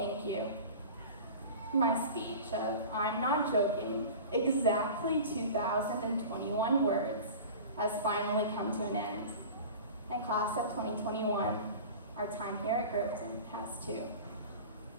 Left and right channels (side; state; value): both; inverted; correlation -0.36